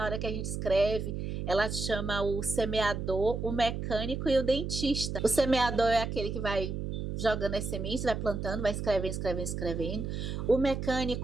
hora que a gente escreve. Ela chama o semeador, o mecânico e o dentista. O semeador é aquele que vai jogando as sementes, vai plantando, vai escrevendo. O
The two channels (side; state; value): right; noise; hum, 4 dB below the sound